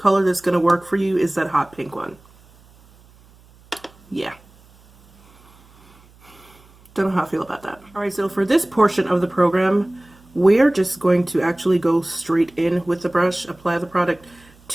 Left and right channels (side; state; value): right; noise; hum, 28 dB below the sound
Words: that's going to work for you is that hot pink one. Yeah. Don't know how I feel about that. Alright, so for this portion of the program, we're just going to actually go straight in with the brush, apply the product